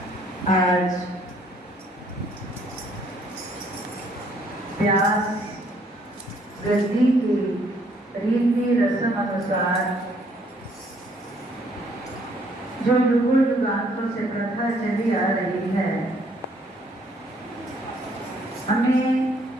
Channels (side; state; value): both; normal; correlation 0.65